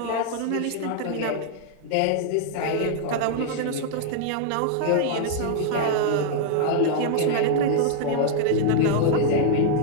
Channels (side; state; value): both; different; correlation -0.01